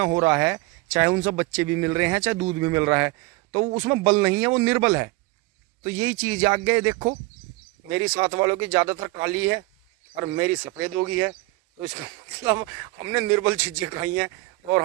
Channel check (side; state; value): left; quieter; 21.9 dB